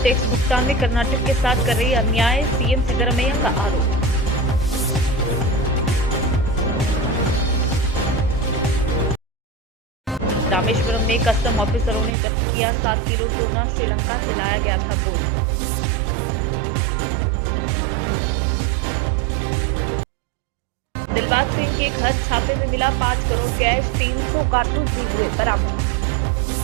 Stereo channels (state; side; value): drops out; left; at 12.1 s